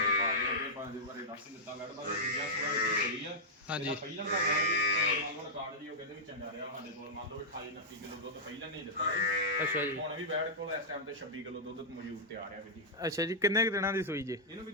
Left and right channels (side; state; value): both; normal; correlation -0.09